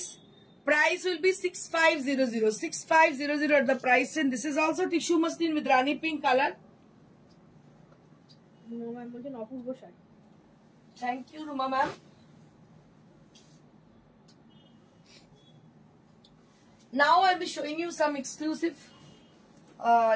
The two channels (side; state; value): both; identical; correlation 1.00